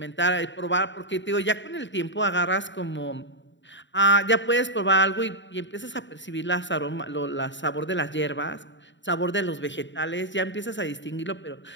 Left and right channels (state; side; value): late; right; 0.54 ms